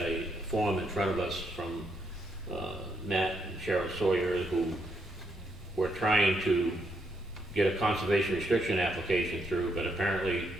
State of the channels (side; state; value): both; normal; correlation 0.77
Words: form in front of us from Matt and Cheryl Sawyer, who were trying to get a conservation restriction application through, but apparently,